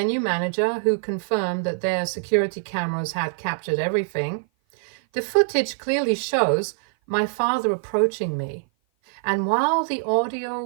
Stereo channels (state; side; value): silent; left; 56 dB below the other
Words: manager, who confirmed that their security cameras had captured everything. The footage clearly shows my father approaching me, and while the audio